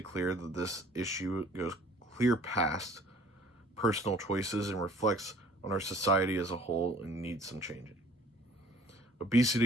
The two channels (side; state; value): both; normal; correlation 0.53